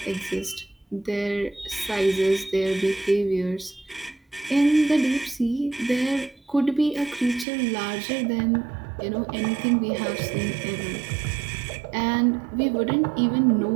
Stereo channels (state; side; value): drops out; left; at 7.5 s